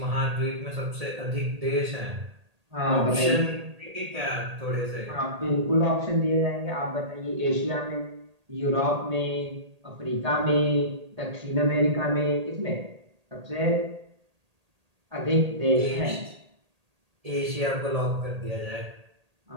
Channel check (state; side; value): late; left; 1.8 ms